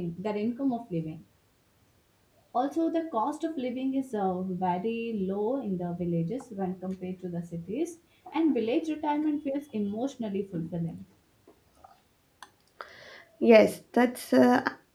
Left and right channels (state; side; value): identical; both; correlation 1.00